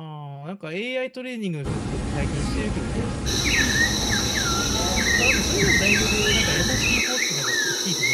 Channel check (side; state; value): both; identical; correlation 1.00